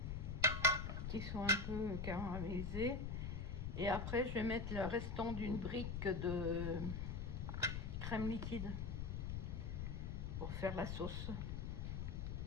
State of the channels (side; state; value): left; noise; rumble, 3 dB below the sound